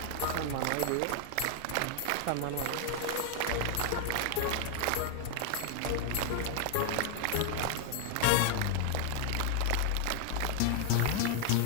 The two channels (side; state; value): both; different; correlation 0.00